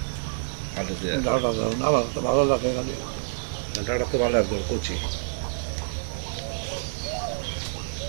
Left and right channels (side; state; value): left; silent; 56 dB below the other